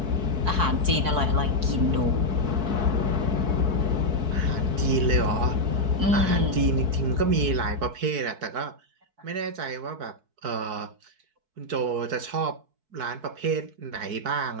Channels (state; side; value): late; left; 4.6 ms